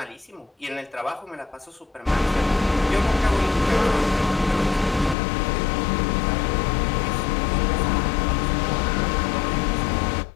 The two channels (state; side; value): drops out; right; at 5.2 s